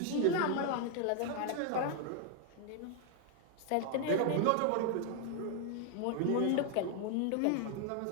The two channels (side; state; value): both; different; correlation 0.00